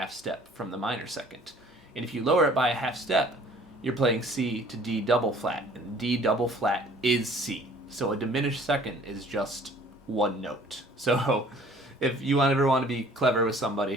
step from the minor second. And if you lower it by a half step, you're playing C to D double flat, and D double flat is C. So a diminished second is just 1 note. So if you ever want to be clever with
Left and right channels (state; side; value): normal; both; correlation 0.54